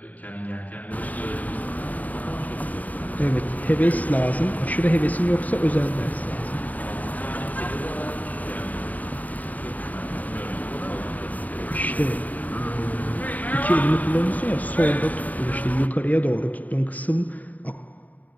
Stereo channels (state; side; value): late; right; 0.076 ms